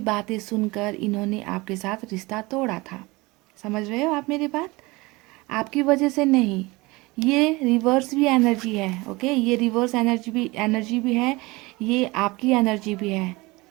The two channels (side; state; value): left; quieter; 22.9 dB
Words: बातें सुनकर इन्होंने आपके साथ रिश्ता तोड़ा था। समझ रहे हो आप मेरी बात? आपकी वजह से नहीं, ये रिवर्स भी एनर्जी है, ओके, ये रिवर्स एनर्जी भी है, ये आपकी एनर्जी भी है,